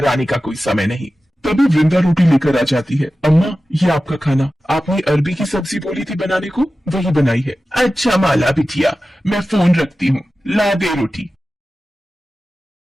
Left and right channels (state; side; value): normal; both; correlation 0.94